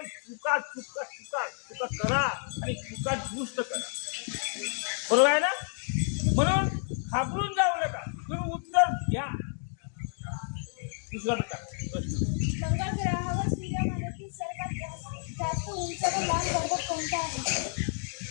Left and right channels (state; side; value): silent; right; 58 dB below the other